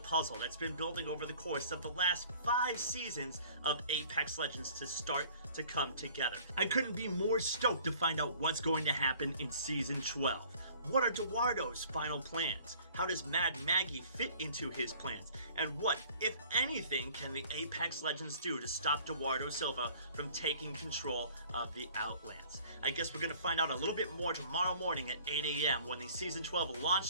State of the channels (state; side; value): inverted; both; correlation -0.51